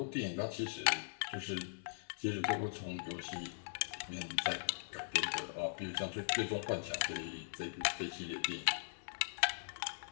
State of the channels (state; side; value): silent; right; 51 dB below the other